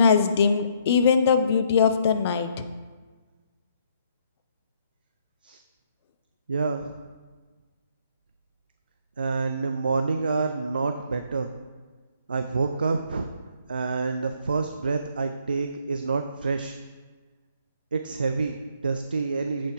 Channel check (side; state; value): both; inverted; correlation -0.68